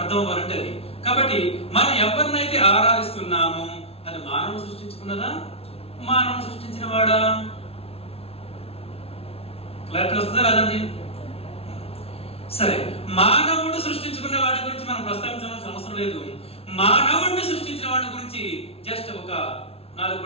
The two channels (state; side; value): late; right; 0.29 ms